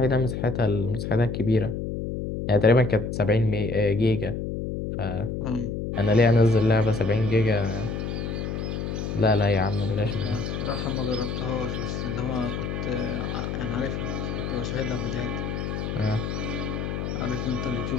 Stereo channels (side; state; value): left; noise; hum, 3 dB below the sound